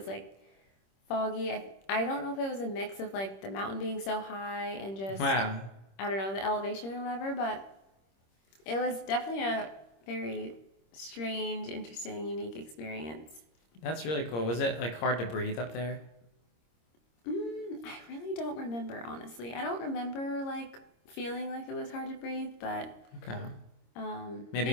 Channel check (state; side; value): late; right; 26 ms